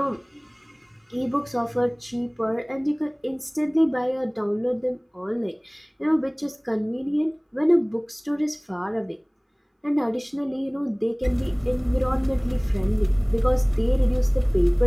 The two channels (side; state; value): both; identical; correlation 1.00